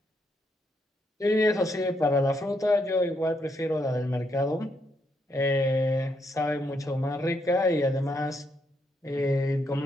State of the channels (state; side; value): normal; both; correlation 0.77